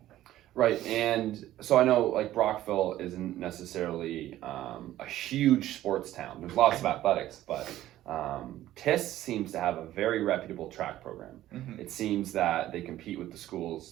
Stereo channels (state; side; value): quieter; left; 13.9 dB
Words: Right, and so I know like Brockville isn't necessarily a huge sports town. There's lots of athletics, but TIS seems to have a very reputable track program. It seems that they compete with the schools,